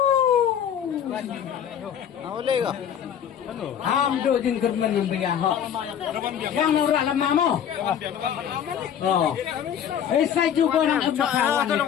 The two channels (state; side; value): quieter; right; 9.0 dB